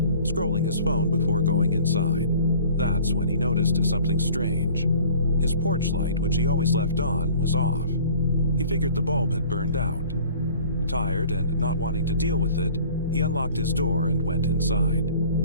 his phone before going inside. That's when he noticed something strange. His porch light, which he always left on, was off. He figured the bulb had burned out. Tired and not wanting to deal with it, he unlocked his door and went inside.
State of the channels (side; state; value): both; inverted; correlation -0.49